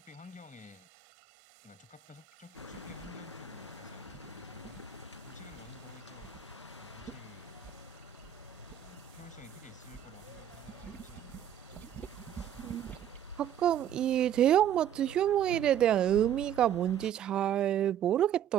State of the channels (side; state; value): left; quieter; 10.2 dB